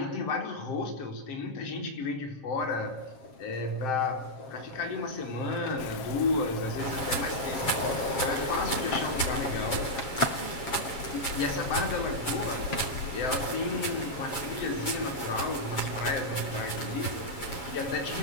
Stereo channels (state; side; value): late; right; 7.2 ms